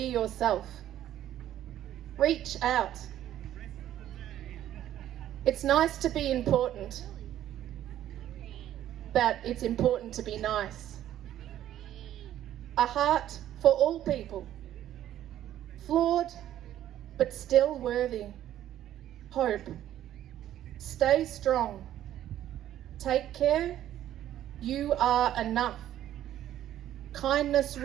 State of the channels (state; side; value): quieter; left; 12.1 dB